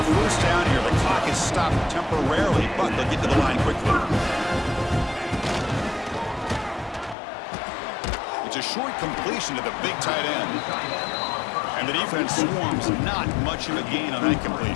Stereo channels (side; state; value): right; drops out; at 7.2 s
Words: first down here. The clock is stopped temporarily, but they'll get to the line quickly. It's a short completion to the big tight end. And the defense swarms not much of a gain on that